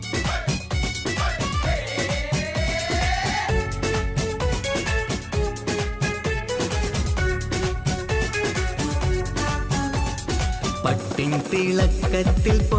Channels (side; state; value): both; identical; correlation 1.00